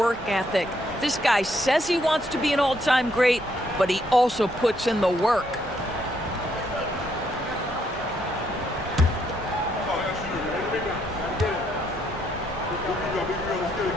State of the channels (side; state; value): both; normal; correlation 0.73